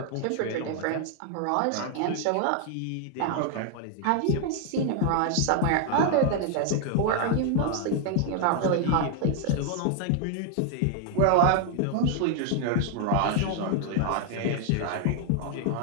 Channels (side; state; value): both; different; correlation 0.00